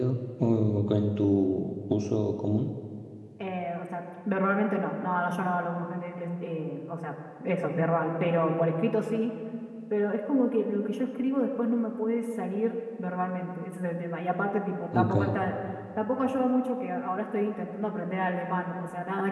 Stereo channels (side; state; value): both; identical; correlation 1.00